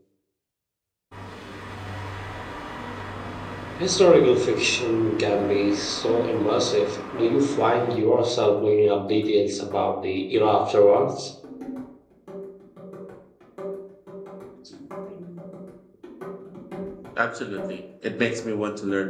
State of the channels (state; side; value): identical; both; correlation 1.00